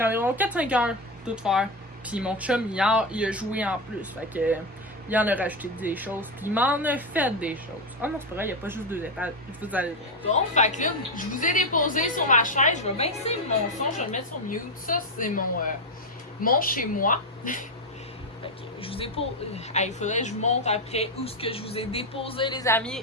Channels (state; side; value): normal; both; correlation 0.09